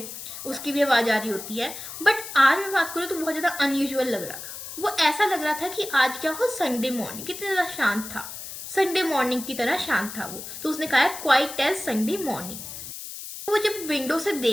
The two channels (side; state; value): left; noise; hiss, 10 dB below the sound